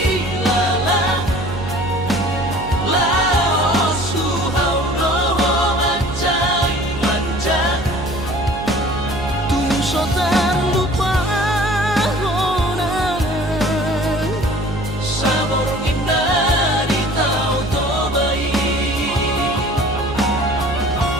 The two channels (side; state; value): right; noise; hum, 10 dB below the sound